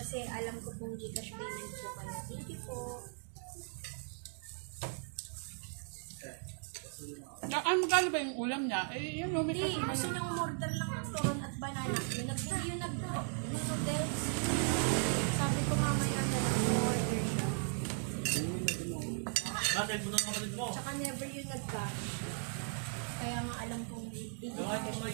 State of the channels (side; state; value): left; silent; 53 dB below the other